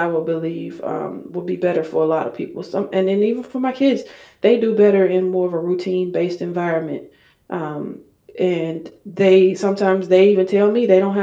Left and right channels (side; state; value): both; identical; correlation 1.00